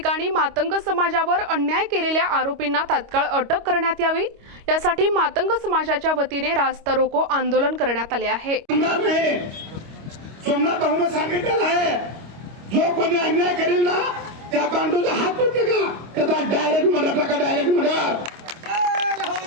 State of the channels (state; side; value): late; left; 25 ms